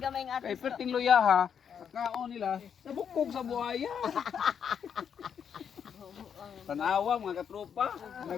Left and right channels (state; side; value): quieter; right; 7.7 dB